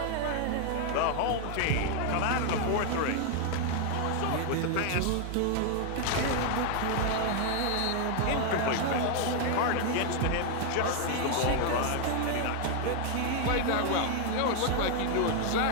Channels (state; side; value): different; both; correlation 0.00